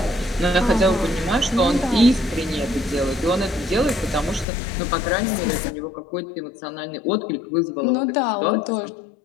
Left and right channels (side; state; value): right; drops out; at 4.5 s